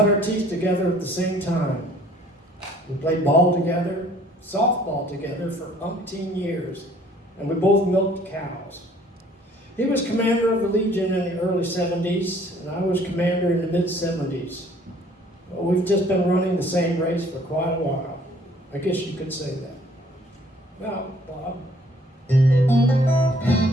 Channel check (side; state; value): both; normal; correlation 0.58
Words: our teeth together at the same time. We played ball together, softball together for umpteen years, and we both milked cows. He was commander of the Legion in the early 70s, and I was commander in the mid-70s. Well, we've just been running the same race for quite a while. I guess you could say that. Now, Bob,